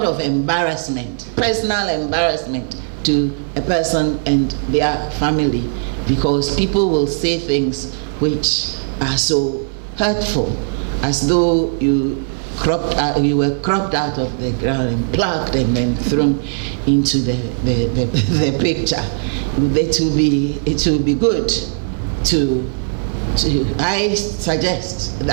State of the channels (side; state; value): left; silent; 67 dB below the other